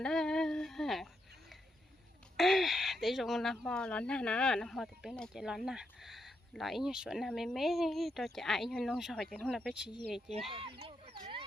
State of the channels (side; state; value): both; normal; correlation 0.82